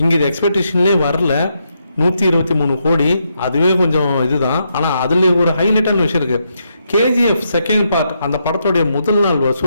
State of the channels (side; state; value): both; inverted; correlation -0.80